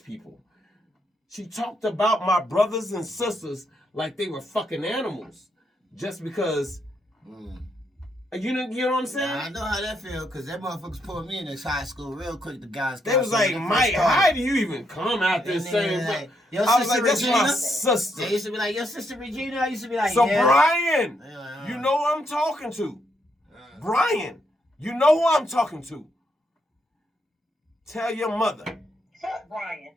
people? She talked about my brothers and sisters like they were fucking animals, just because. You know what I'm saying? I know how that feel, because that motherfuckers pulled me in this high school real quick. The guys. They was like, Mike, how do you even come out this same? Like, I was like, that's my sister. They used to be like, your sister Regina. I used to be like, so yeah. Brian, you know who I'm talking to. Brian, you know who I'm talking to. Tell your mother. Fuck Brian.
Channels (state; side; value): normal; both; correlation 0.77